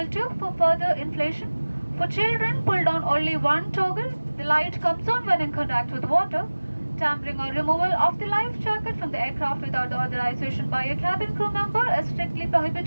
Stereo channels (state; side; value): inverted; both; correlation -1.00